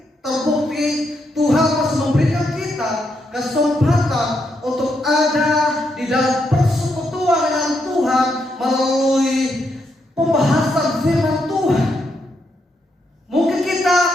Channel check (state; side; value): normal; both; correlation 0.80